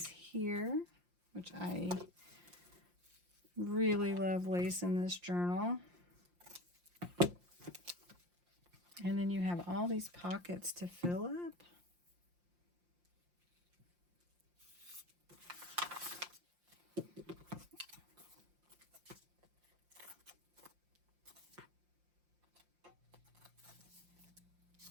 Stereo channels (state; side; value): late; left; 5.7 ms